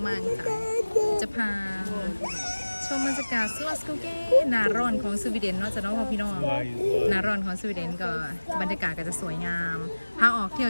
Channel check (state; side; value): inverted; both; correlation -1.00